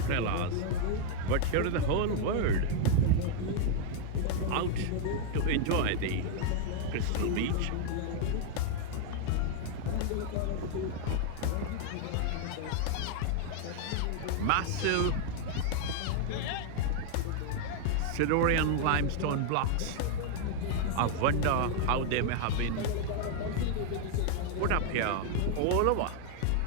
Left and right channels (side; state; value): both; different; correlation 0.00